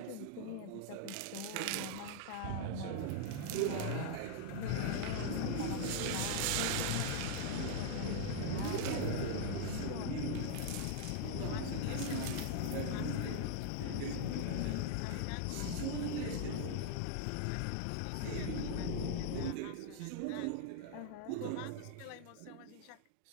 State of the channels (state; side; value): different; both; correlation -0.01